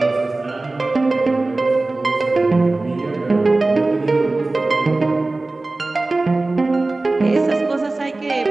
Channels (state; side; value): quieter; left; 3.1 dB